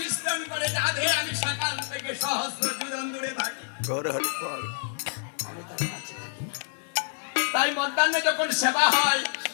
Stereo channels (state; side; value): silent; right; digital silence